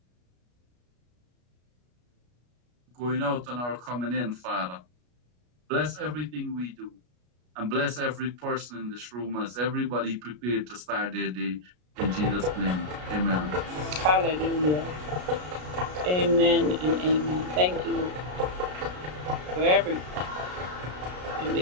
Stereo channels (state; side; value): late; left; 33 ms